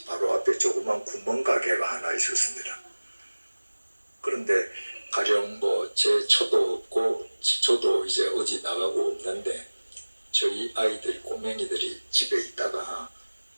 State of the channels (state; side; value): inverted; both; correlation -1.00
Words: 바로 앞에 조그만 구멍가게가 하나 있었습니다. 그런데 가령 제 처도 없고 저도 이제 어디 나가고 없는데 저희 아이들, 꼬맹이들이 집에 있다가